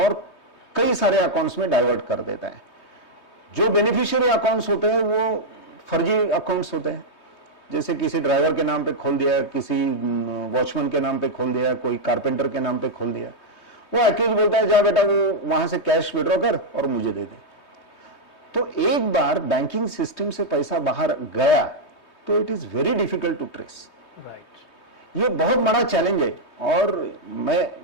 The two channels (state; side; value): late; right; 3.2 ms